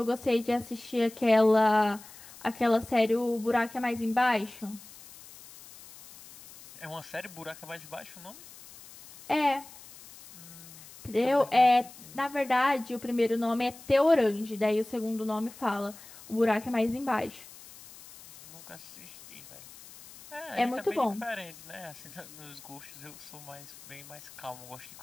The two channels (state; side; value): noise; left; hiss, 19 dB below the sound